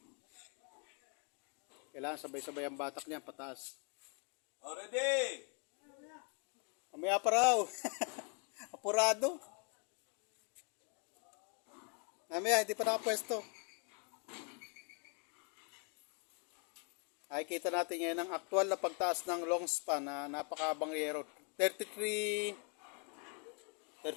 Kailangan sabay-sabay ang batak niya pataas. Ready! Mamaya pa raw. Apurado. Mamaya, hindi pa nakapwesto. Ay, kita natin ngayon ang aktual na pagtaas ng long span na napakabangyero. 33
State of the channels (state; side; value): quieter; right; 38.5 dB